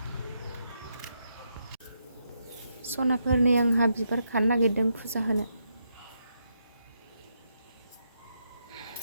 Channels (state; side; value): inverted; both; correlation -0.80